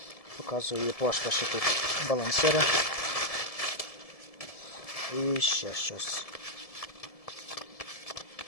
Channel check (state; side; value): late; right; 1.7 ms